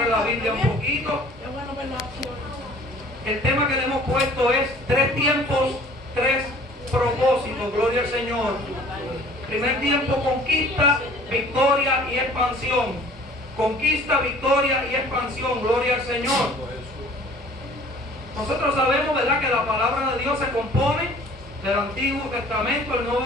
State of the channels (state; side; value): normal; both; correlation 0.50